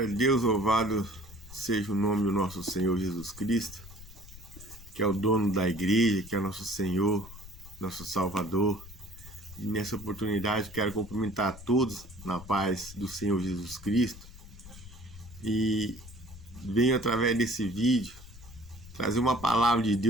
a Deus, louvado seja o nome do nosso Senhor Jesus Cristo, que é o dono da igreja, que é nosso Senhor, nosso Salvador. E nessa oportunidade quero cumprimentar a todos na paz do Senhor Jesus Cristo. E venho através desse vídeo trazer uma palavra de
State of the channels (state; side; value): noise; left; rumble, 17 dB below the sound